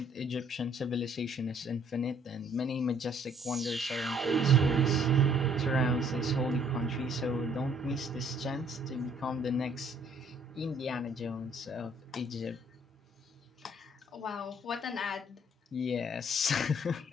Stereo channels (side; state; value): both; normal; correlation 0.62